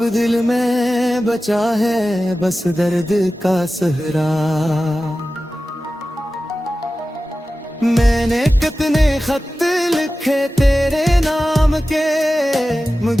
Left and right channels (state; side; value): normal; both; correlation 0.95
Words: दिल में बचा है बस दर्द का सहरा। मैंने कितने खत लिखे तेरे नाम के,